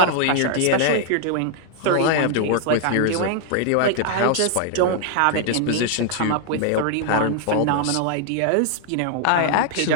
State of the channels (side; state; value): both; different; correlation 0.00